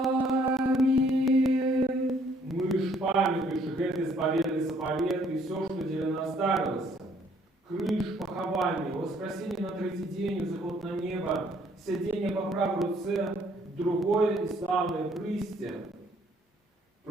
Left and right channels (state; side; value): normal; both; correlation 0.64